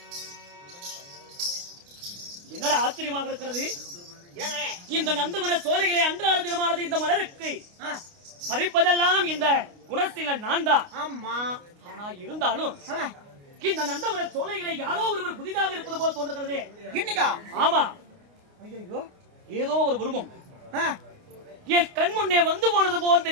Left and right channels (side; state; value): left; late; 29 ms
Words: என்னடா ஆச்சரியமாக இருக்கிறது. இந்த நந்தவன சோலைகளை அன்றாட தினமானது இந்த மலருக்கு பறிப்பதெல்லாம் இந்த குணசீலன் நான் தான். ஆனா இருந்தாலும் இந்த நந்தவன சோலைகளை யாரோ ஒருவர் புதிதாக இருப்பது போல் தோன்றுகிறது. இன்னைக்கா? ஆமா. ஐயோ, ஏதோ ஒரு உருவம் என் கண் முன்னே வந்து போனது போல்